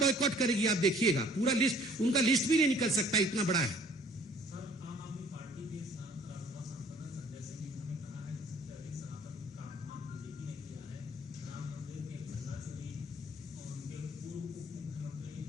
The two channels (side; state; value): both; normal; correlation 0.55